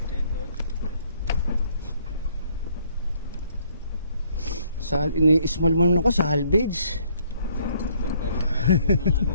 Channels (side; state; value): both; inverted; correlation -0.65